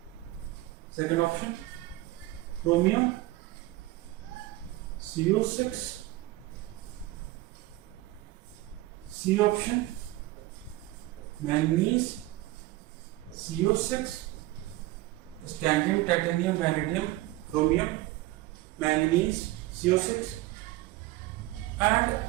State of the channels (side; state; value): left; quieter; 17.7 dB